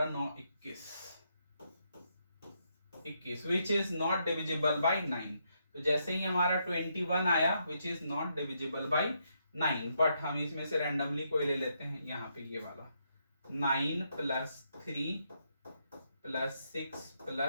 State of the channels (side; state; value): both; inverted; correlation -0.78